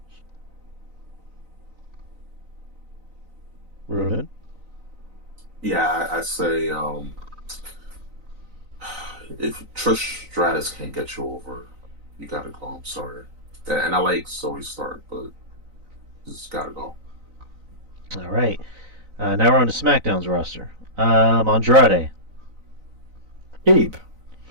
Ruben. Yeah, I say if Trish Stratus can't get you over, you gotta go. I'm sorry. And I like Zoe Stark, but just gotta go. All right. Now we're on to SmackDown's roster. Andrade. Keep.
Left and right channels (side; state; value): left; late; 3.9 ms